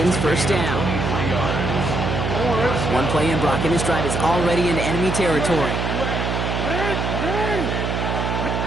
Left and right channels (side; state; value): right; noise; hum, 1 dB below the sound